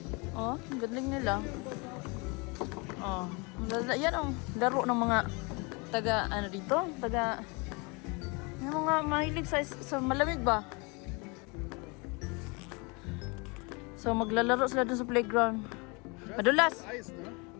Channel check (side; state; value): right; quieter; 29.5 dB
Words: Ang galing nila. Yan laro ng mga yung mga mahilig sa malamig ba? So, maglalaro sila dun sa playground. Madulas.